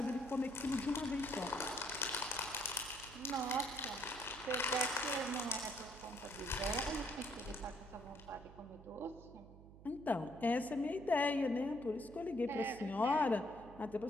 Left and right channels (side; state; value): right; noise; hum, 18 dB below the sound